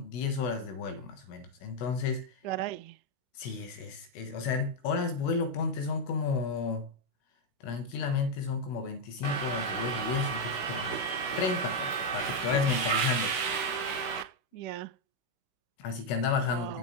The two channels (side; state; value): right; late; 16 ms